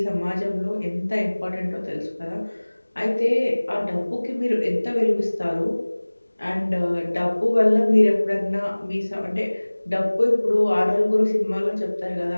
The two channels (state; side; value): inverted; both; correlation -1.00